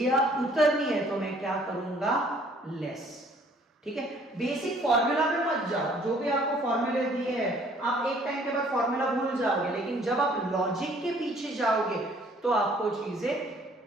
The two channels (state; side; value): normal; both; correlation 0.59